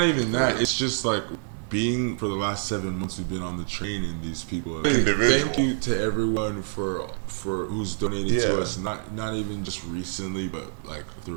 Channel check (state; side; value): silent; left; digital silence